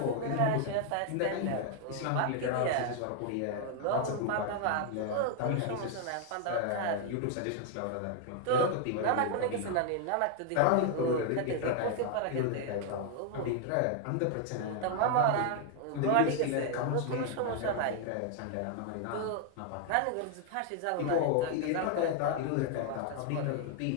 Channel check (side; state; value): both; different; correlation 0.00